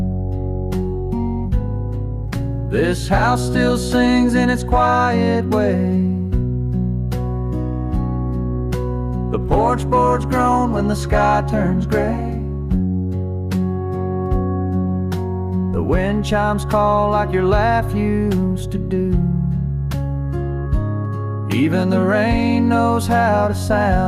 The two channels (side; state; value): both; identical; correlation 1.00